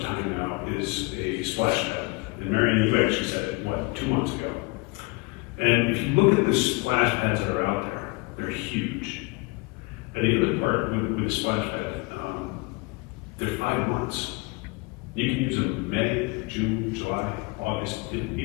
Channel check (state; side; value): quieter; right; 27.0 dB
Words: now, is a splash pad. And Marion, you actually said it, what, 2 months ago? And if you look at the splash pads that are out there, they're huge. And the other part with the splash pad, they're 5 months. You can use them in May, June, July, August,